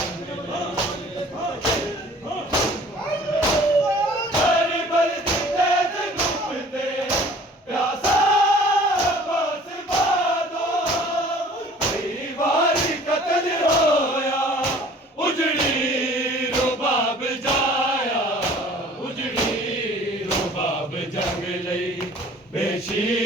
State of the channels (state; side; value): normal; both; correlation 0.50